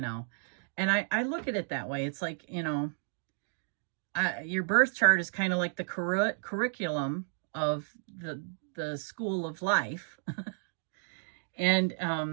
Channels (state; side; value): silent; left; digital silence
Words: And I look at it that way. It's like, you know, your birth chart is kind of like the curriculum of the school of life.